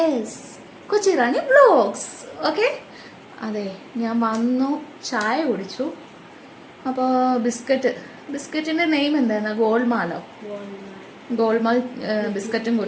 കൊച്ചി റാണി വ്ലോഗ്സ്. ഓക്കെ, അതെ, ഞാൻ വന്നു, ചായ കുടിച്ചു. അപ്പോൾ ബിസ്ക്കറ്റിൻ്റെ നെയിം എന്തായിരുന്നു? ഗോൾമാലോ? ഗോൾമാൽ ബിസ്ക്കറ്റും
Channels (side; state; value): both; identical; correlation 1.00